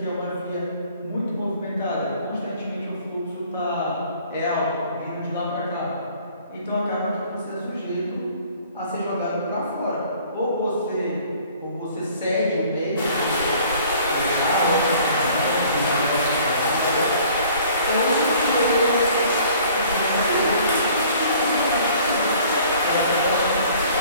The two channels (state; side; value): inverted; both; correlation -0.54